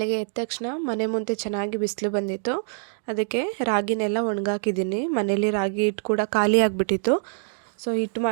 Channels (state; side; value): silent; left; digital silence